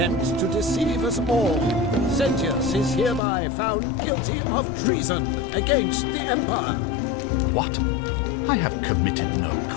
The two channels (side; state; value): right; drops out; at 3.2 s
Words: to deceive us all. Sentius is hereby found guilty of treason against the Empire. What? I have committed no